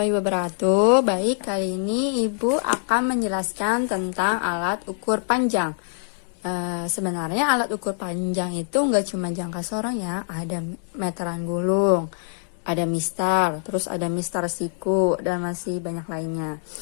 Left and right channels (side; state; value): right; silent; 61 dB below the other